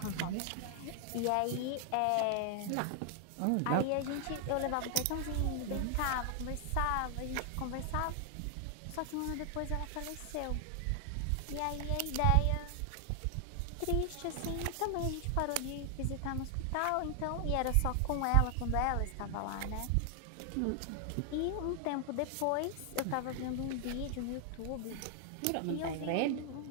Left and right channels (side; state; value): both; different; correlation 0.00